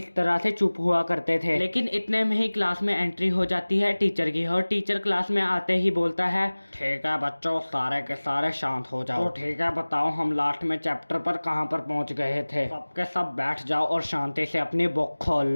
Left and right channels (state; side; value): inverted; both; correlation -1.00